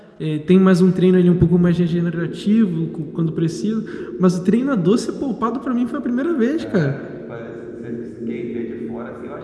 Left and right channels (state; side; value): identical; both; correlation 1.00